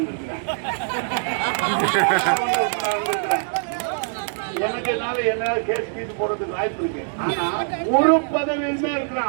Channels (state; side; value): silent; left; 63 dB below the other